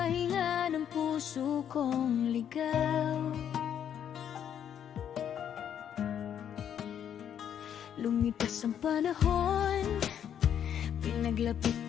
ng puso kong ligaw. Lumipas ang panahon, pinaglapit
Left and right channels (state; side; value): quieter; right; 9.2 dB